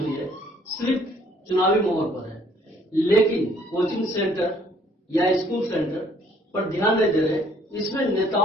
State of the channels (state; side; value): normal; both; correlation 0.61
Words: है सिर्फ चुनावी मोहर पर है, लेकिन कोचिंग सेंटर या स्कूल सेंटर पर ध्यान नहीं दे रहे। इसमें